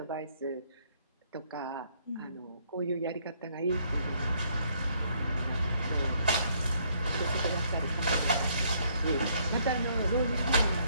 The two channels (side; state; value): both; inverted; correlation -0.67